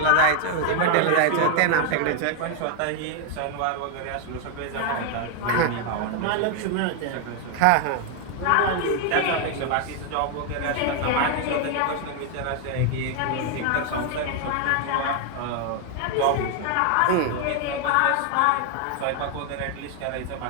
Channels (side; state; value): both; different; correlation 0.01